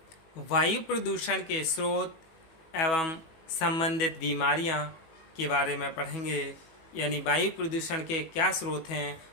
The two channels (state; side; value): late; right; 18 ms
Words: वायु प्रदूषण के स्रोत एवं संबंधित बीमारियां के बारे में पढ़ेंगे। यानी वायु प्रदूषण के क्या स्रोत हैं